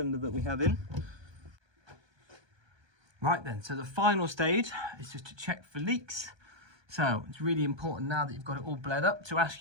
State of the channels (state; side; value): late; left; 1.2 ms